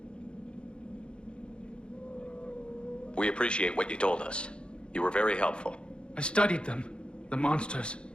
We appreciate what you told us. You were very helpful. I studied them. The monsters.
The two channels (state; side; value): late; right; 0.055 ms